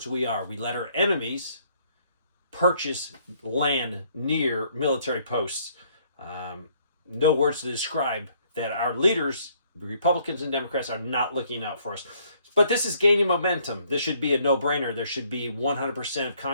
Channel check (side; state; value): both; inverted; correlation -0.65